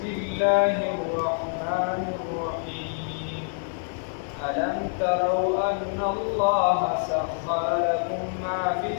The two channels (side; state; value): right; silent; digital silence